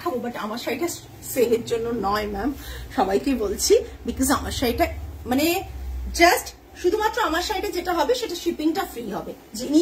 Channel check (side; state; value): both; identical; correlation 1.00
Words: বাট আমার শাড়িটা সেলের জন্য নয় ম্যাম, সবাইকে বলছি, বিকজ আমার শাড়িটা মানে জাস্ট শুধুমাত্র আমার শাড়িটা যেটা হবে সেটা শিপিংটা ফ্রি হবে, যিনি